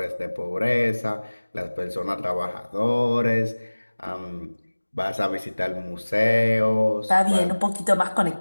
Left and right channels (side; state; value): both; inverted; correlation -1.00